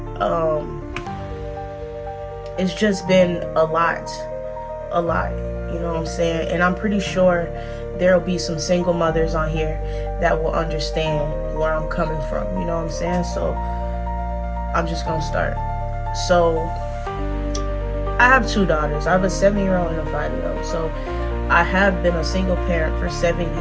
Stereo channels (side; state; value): both; identical; correlation 1.00